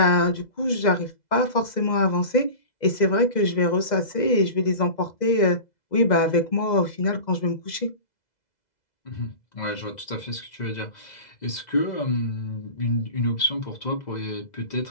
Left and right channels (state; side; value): late; right; 2.0 ms